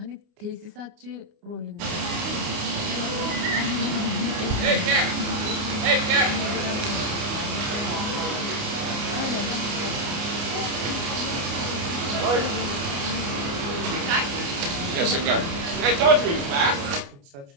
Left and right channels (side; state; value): left; late; 29 ms